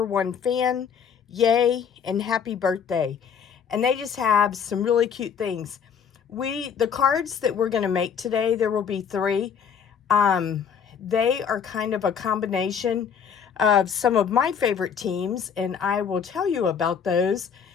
fan, yay, and happy birthday." And they just have some really cute things. The cards that we're going to make today, there will be 3. They are kind of a combination of some of my favorite teams, and I will tell you about those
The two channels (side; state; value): right; quieter; 7.2 dB